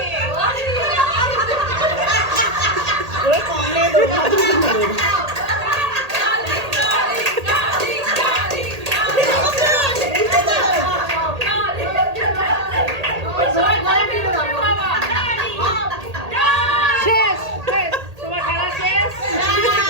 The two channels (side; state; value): left; late; 1.8 ms